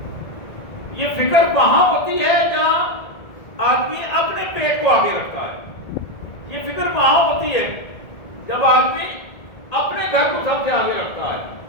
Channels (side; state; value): right; late; 1.8 ms